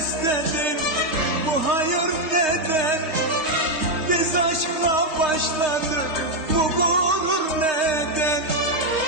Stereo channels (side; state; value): left; late; 3.2 ms